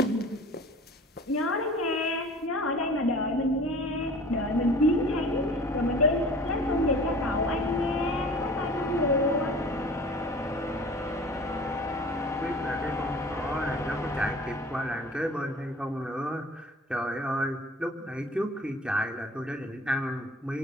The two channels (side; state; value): both; normal; correlation 0.44